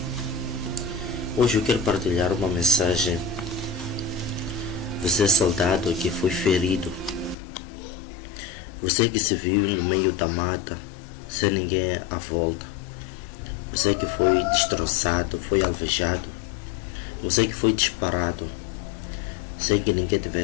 Hoje eu quero partilhar uma mensagem. Você é soldado que foi ferido. Você que se viu no meio da mata, sem ninguém à volta. Você que foi destroçado, foi alvejado. Você que foi disparado, sem que ninguém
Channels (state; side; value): drops out; right; at 7.4 s